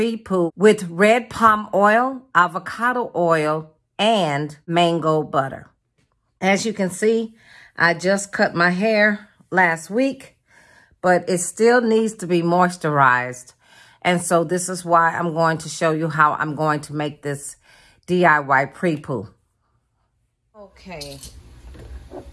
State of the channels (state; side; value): identical; both; correlation 1.00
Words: with red palm oil, avocado oil, and mango butter. As you can see, I just cut my hair last week, but it still needs to be moisturized. And so this is why I'm going to show you how I'm going to make this DIY pre-poo. Okay,